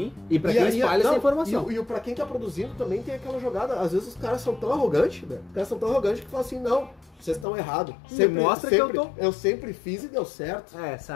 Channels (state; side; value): drops out; right; at 7.5 s